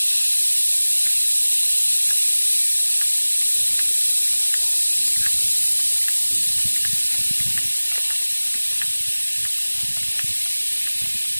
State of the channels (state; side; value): inverted; both; correlation -1.00